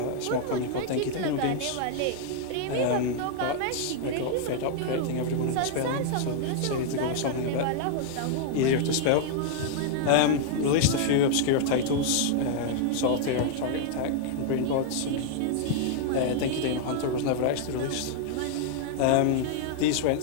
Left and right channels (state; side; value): different; both; correlation -0.01